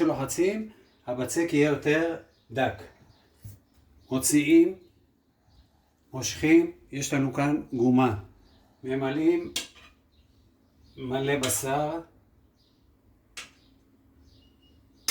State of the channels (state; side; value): identical; both; correlation 1.00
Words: הבצק יהיה יותר דק. מוציאים, מושכים, יש לנו כאן גומה. ממלאים מלא בשר.